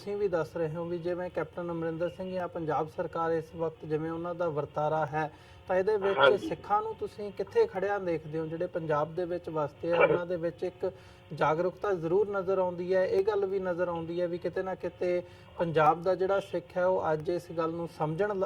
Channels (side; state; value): both; identical; correlation 1.00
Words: ਵੀ ਦੱਸ ਰਹੇ ਹੋ ਵੀ ਜਿਵੇਂ ਕੈਪਟਨ ਅਮਰਿੰਦਰ ਸਿੰਘ ਜਾਂ ਪੰਜਾਬ ਸਰਕਾਰ ਇਸ ਵਕਤ ਜਿਵੇਂ ਉਹਨਾਂ ਦਾ ਵਰਤਾਰਾ ਹੈ ਤਾਂ ਇਹਦੇ ਵਿੱਚ ਸਿੱਖਾਂ ਨੂੰ ਤੁਸੀਂ ਕਿੱਥੇ ਖੜਿਆ ਦੇਖਦੇ ਹੋ ਜਿਹੜੇ ਪੰਜਾਬ ਦੇ ਵਿੱਚ ਵਸਦੇ ਆ ਉਹਨਾਂ ਦੇ ਵਿੱਚ ਇੱਕ ਜਾਗਰੂਕਤਾ ਜ਼ਰੂਰ ਨਜ਼ਰ ਆਉਂਦੀ ਹੈ। ਇਹ ਗੱਲ ਵੀ ਨਜ਼ਰ ਆਉਂਦੀ ਹੈ ਵੀ ਕਿਤੇ ਨਾ ਕਿਤੇ ਪੰਜਾਬ ਦਾ ਜਿਹੜਾ ਸਿੱਖ ਹੈ ਉਹ ਅੱਜ ਇਸ ਗੱਲ ਨੂੰ